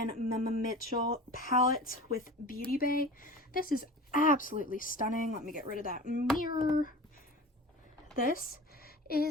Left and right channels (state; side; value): normal; both; correlation 0.36